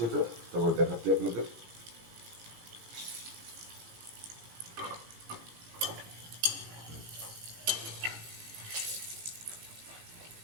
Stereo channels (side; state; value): left; late; 17 ms